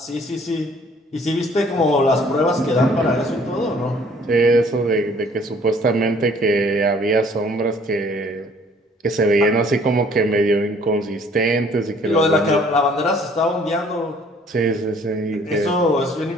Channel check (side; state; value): both; normal; correlation 0.58